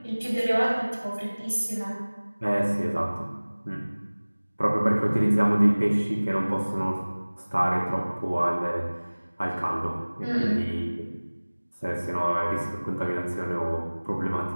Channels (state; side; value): inverted; both; correlation -1.00